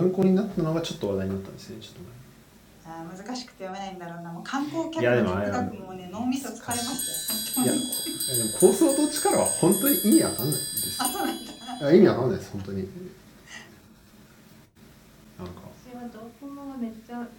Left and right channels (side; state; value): both; identical; correlation 1.00